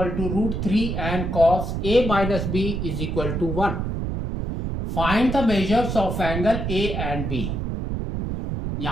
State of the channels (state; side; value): noise; right; rumble, 3 dB below the sound